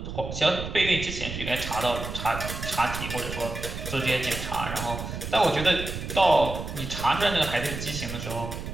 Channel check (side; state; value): right; noise; rumble, 7 dB below the sound